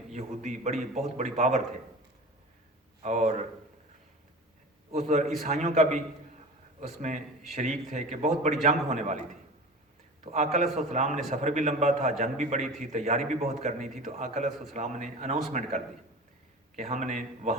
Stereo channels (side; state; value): both; normal; correlation 0.34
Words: یہودی بہت بڑی پاور تھے، اور اس عیسائیوں کا بھی اس میں شریک تھے کہ بہت بڑی جنگ ہونے والی تھی۔ تو آقا علیہ السلام نے، سفر بھی لمبا تھا، جنگ بھی بڑی تھی، تیاری بھی بہت کرنی تھی، تو آقا علیہ السلام نے اناؤنسمنٹ کر دی کہ ہم نے